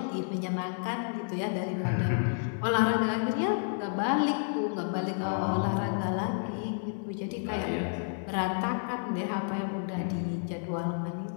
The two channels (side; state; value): right; silent; digital silence